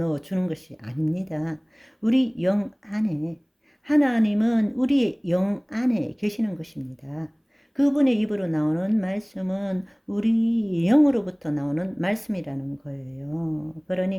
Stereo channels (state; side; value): identical; both; correlation 1.00